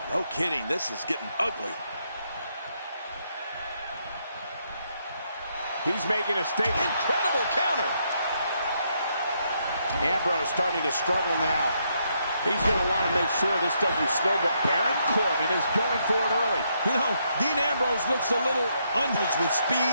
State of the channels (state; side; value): inverted; both; correlation -0.76